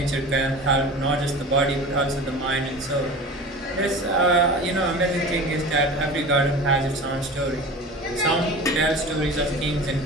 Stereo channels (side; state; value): both; normal; correlation 0.35